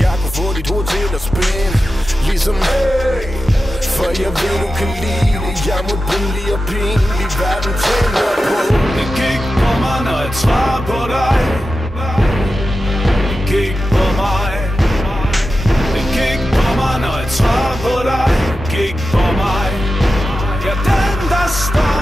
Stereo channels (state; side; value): normal; both; correlation 0.92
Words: Jeg kunne få dit hoved til at spænde ligesom hey, for jeg ved du kan lide det. Jeg må billig og pinlig, verden tænder på. Det gik på mig, når jeg svarer på dig. Det gik på mig. Det gik på mig, når jeg svarer på dig. Det gik på mig. Ja, den der står